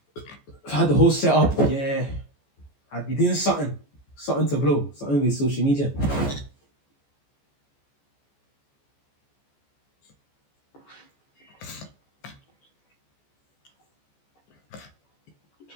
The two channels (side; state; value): right; late; 14 ms